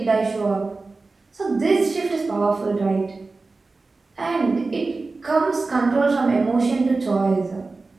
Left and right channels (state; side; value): quieter; left; 3.7 dB